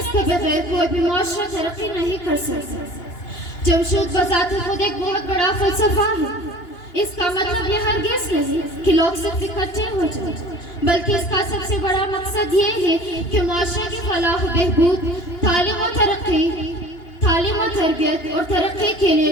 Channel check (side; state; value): right; late; 2.9 ms